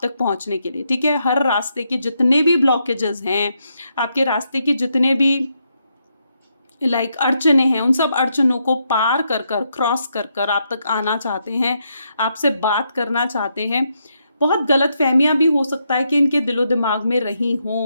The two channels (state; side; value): inverted; both; correlation -0.79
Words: तक पहुंचने के लिए, ठीक है। हर रास्ते के जितने भी ब्लॉकेजेस हैं, आपके रास्ते के जितने भी अड़चने हैं, उन सब अड़चनों को पार कर कर, क्रॉस कर कर आप तक आना चाहते हैं, आपसे बात करना चाहते हैं। बहुत गलत फहमियाँ भी हो सकता है कि इनके दिलो दिमाग में रही